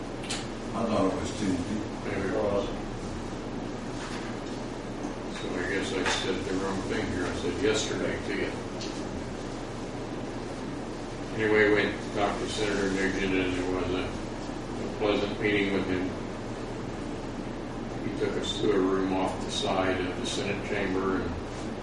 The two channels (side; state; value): both; identical; correlation 1.00